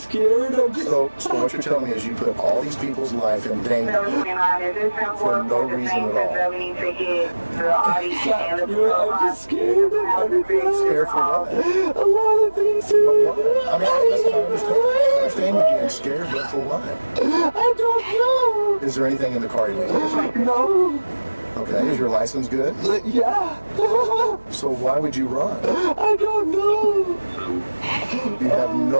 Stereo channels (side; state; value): both; inverted; correlation -1.00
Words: I'm just... So what you're telling me is you put all these people's life in danger for no reason at all. I'm just scared. Scared for what? A lot of things, dude. I mean, listen, I understand you being scared, but for what? I don't know. Is there anything in the car illegal? No. Okay, is your license good? Yeah. So why would you run? I don't know. You have